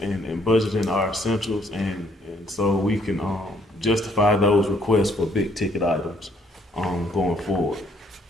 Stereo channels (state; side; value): normal; both; correlation 0.67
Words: and budgeting our essentials, and so we can justify those requests for big ticket items going forward.